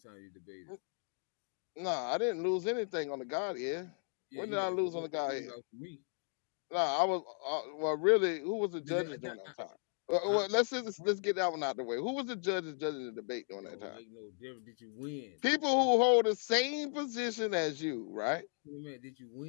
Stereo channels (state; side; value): silent; right; 54 dB below the other